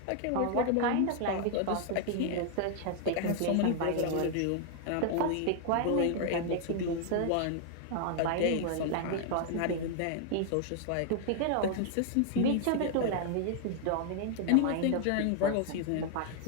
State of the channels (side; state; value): both; different; correlation 0.00